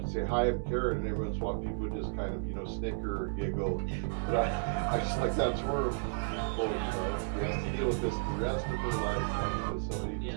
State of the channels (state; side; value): silent; left; 56 dB below the other